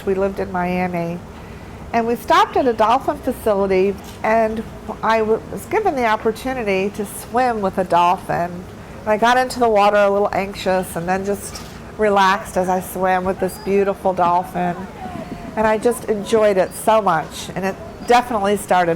We lived in Miami. And we stopped at a dolphin facility, and I was given the opportunity to swim with a dolphin. And I got into the water a little anxious and then just relaxed as I swam with this beautiful dolphin. And I just enjoyed it so much, and it definitely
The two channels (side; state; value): both; identical; correlation 1.00